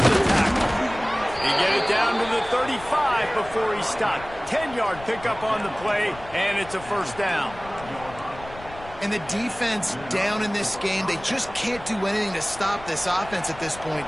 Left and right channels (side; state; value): left; noise; rumble, 17 dB below the sound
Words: the tackle. He get it down to the 35 before he stopped. 10-yard pickup on the play, and it's a first down. And the defense down in this game, they just can't do anything to stop this offense at this